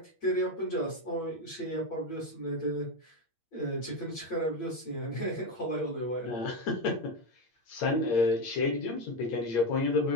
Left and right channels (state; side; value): late; right; 8.6 ms